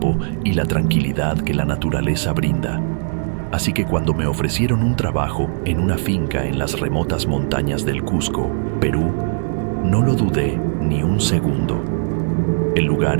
y la tranquilidad que la naturaleza brinda. Así que cuando me ofrecieron un trabajo en una finca en las remotas montañas del Cusco, Perú, no lo dudé ni un segundo. El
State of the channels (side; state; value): left; silent; digital silence